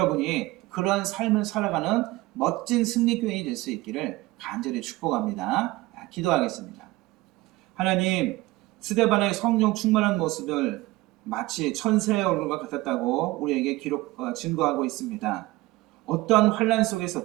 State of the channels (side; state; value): left; quieter; 19.6 dB